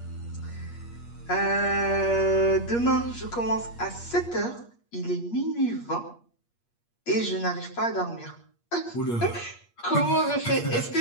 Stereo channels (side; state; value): right; late; 8.5 ms